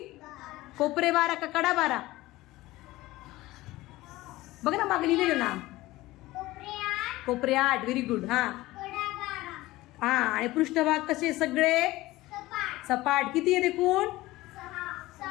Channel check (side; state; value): right; quieter; 18.2 dB